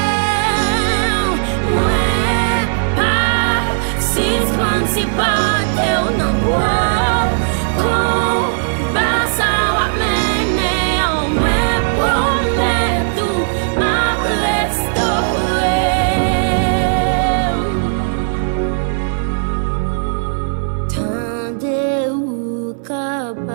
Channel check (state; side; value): silent; left; digital silence